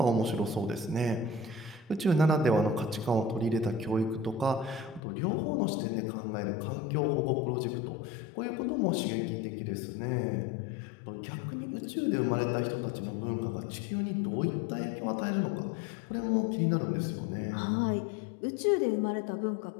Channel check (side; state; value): right; drops out; at 5.0 s